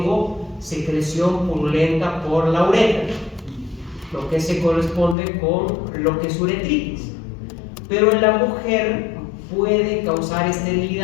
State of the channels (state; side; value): drops out; right; at 5.2 s